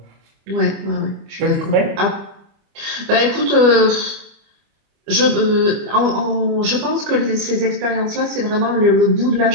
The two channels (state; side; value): late; left; 25 ms